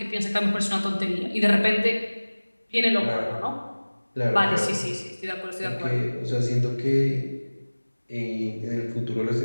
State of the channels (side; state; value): both; inverted; correlation -1.00